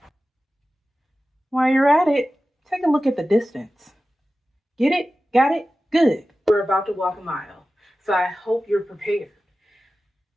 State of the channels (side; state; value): both; normal; correlation 0.95